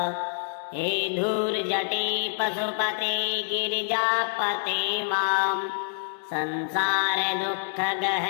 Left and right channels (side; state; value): right; silent; 60 dB below the other